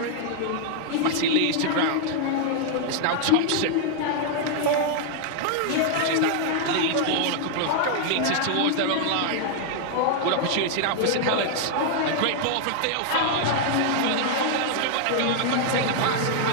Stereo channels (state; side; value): different; both; correlation 0.00